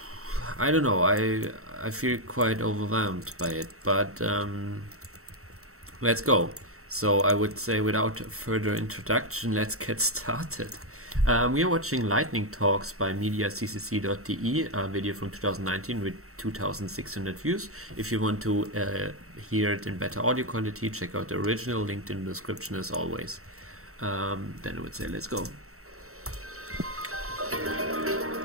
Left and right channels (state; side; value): late; left; 0.64 ms